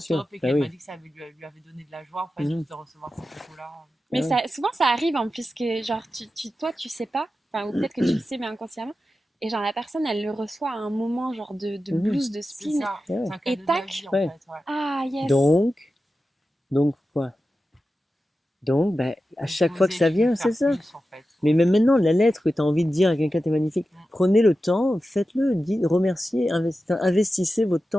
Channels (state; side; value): normal; both; correlation 0.92